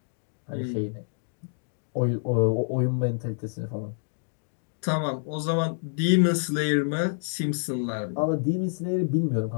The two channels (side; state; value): right; silent; digital silence